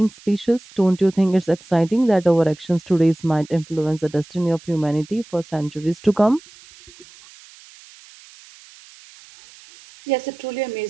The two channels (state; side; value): noise; right; hiss, 23 dB below the sound